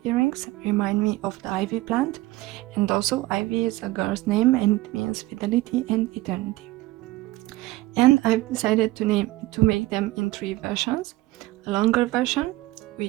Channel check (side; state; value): left; quieter; 18.5 dB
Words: earrings remind me of the ivy plant, and also ivy is a girl's name and it means fidelity and eternity. And I've decided to make them in three versions: a longer version,